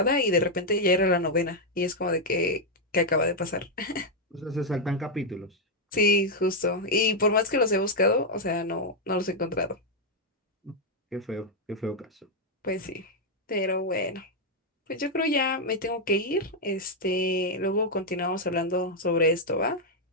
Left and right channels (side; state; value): both; normal; correlation -0.01